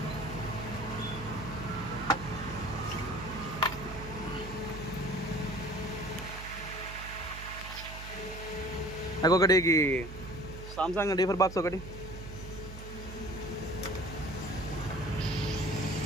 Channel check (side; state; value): right; noise; hum, 11 dB below the sound